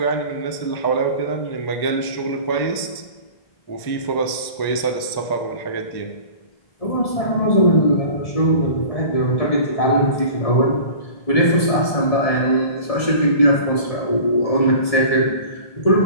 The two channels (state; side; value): late; right; 1.1 ms